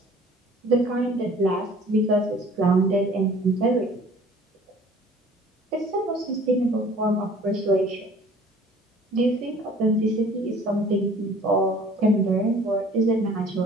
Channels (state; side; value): normal; both; correlation 0.50